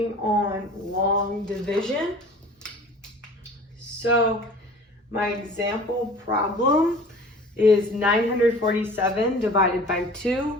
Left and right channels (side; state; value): both; normal; correlation 0.44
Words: on long division. So my example problem is 947 divided by